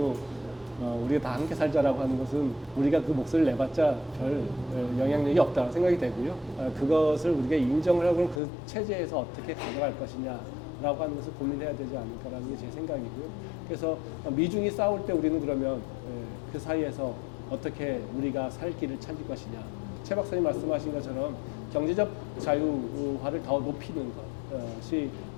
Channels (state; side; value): drops out; right; at 8.4 s